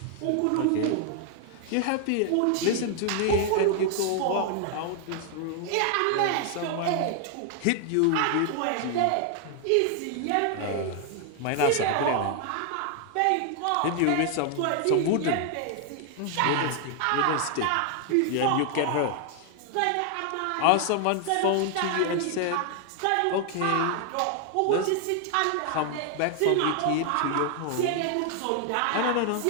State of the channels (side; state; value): both; different; correlation 0.00